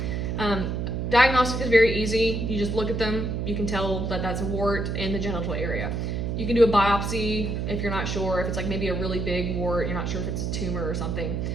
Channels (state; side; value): noise; right; hum, 1 dB below the sound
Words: Diagnostic is very easy. You just look at them, you can tell that that's a wart in the genital area. You can do a biopsy if you're not sure, if it's like maybe a really big wart, you're not sure if it's a tumor or something.